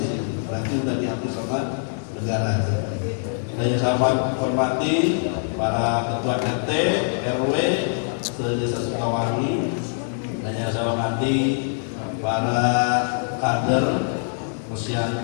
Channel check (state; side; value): silent; right; digital silence